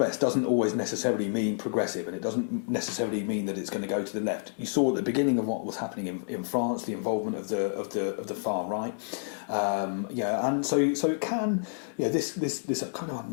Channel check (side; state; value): right; silent; 58 dB below the other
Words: doesn't always necessarily mean progressive, and it doesn't necessarily mean that it's going to go to the left. You saw at the beginning of what was happening in France, the involvement of the far right, and so it can, this kind of